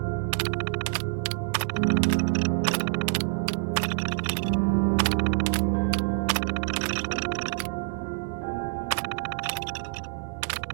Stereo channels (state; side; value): silent; left; digital silence